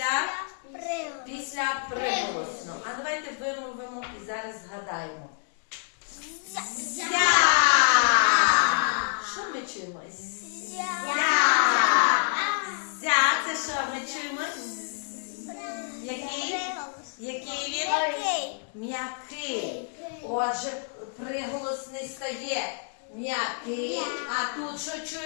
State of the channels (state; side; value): silent; right; digital silence